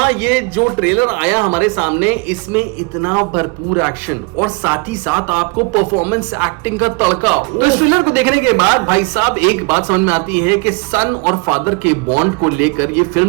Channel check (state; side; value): quieter; left; 29.1 dB